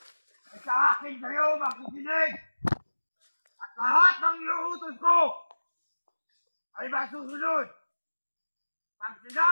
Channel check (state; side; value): inverted; both; correlation -1.00